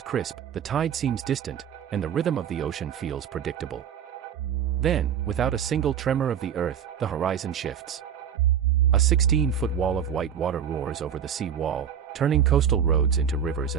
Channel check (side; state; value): left; quieter; 8.5 dB